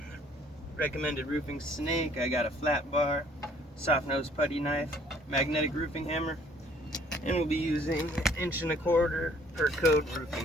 recommended roofing snake, I got a flat bar, soft nose putty knife, magnetic roofing hammer, and we'll be using 1.25" per code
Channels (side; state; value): both; normal; correlation 0.60